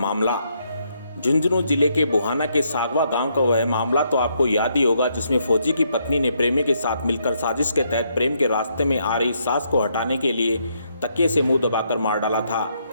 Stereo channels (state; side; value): inverted; both; correlation -0.75